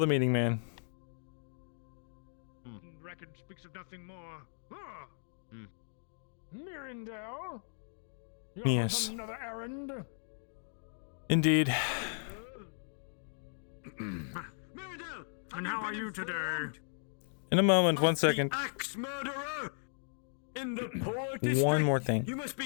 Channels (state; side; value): silent; right; digital silence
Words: meeting man. Record speaks of nothing more. Ah! Hmm. Myrindal? Yes. On another errand? Indeed. Myrindal! And how are you today? In a moment, 1 second. Axe murderer! In the poor district. One more thing. You must